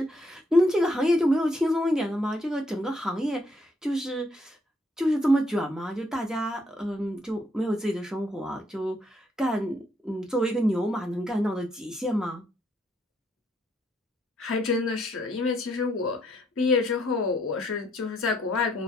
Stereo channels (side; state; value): both; normal; correlation 0.72